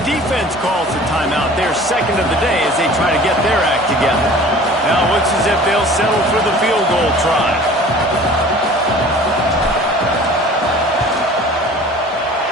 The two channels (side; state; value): both; normal; correlation 0.45